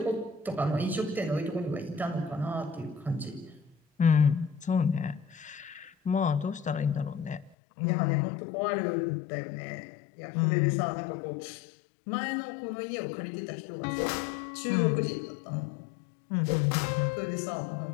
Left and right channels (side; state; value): right; drops out; at 7.6 s